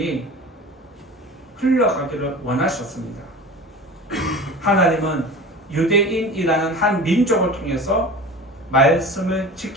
흘러가기를 원하셨습니다. 하나님은 유대인이라는 한 민족을 통해서 말씀을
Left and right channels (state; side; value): normal; both; correlation 0.36